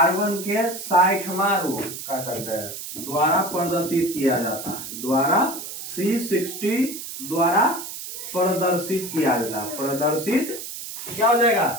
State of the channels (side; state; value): right; noise; hiss, 9 dB below the sound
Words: के 60वां रूप कह सकते हैं द्वारा प्रदर्शित किया जाता है। द्वारा C60 द्वारा प्रदर्शित किया जाता है। प्रदर्शित क्या हो जाएगा?